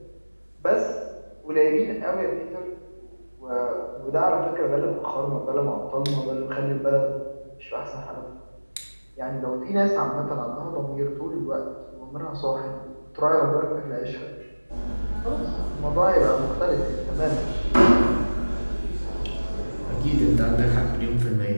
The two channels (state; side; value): inverted; both; correlation -1.00